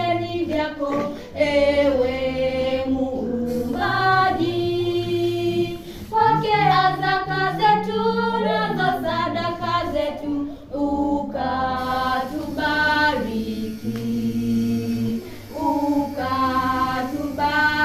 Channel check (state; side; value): identical; both; correlation 1.00